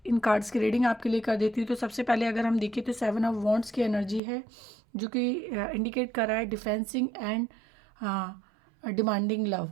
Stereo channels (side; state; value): left; drops out; at 4.2 s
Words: इन कार्ड्स की रीडिंग आपके लिए कर देती हूँ। तो सबसे पहले अगर हम देखें तो 7 ऑफ वॉन्ड्स की एनर्जी है, जो कि इंडिकेट कर रहा है डिफेंसिंग एंड डिमांडिंग लव।